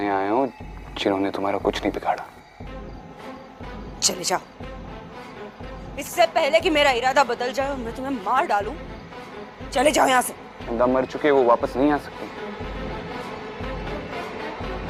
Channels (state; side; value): identical; both; correlation 1.00